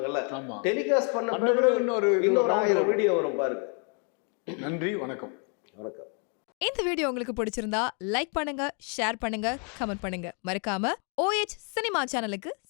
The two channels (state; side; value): quieter; right; 39.4 dB